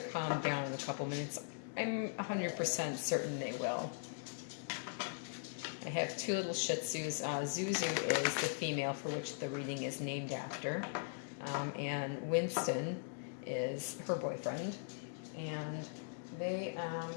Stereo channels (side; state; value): right; silent; digital silence